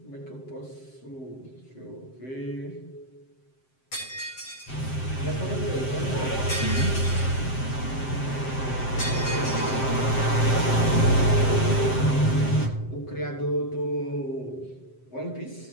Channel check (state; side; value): late; right; 7.7 ms